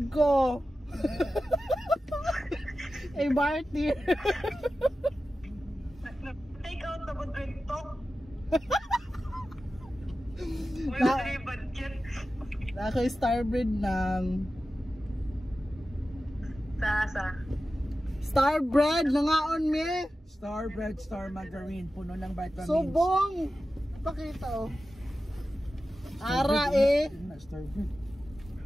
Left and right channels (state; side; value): normal; both; correlation 0.94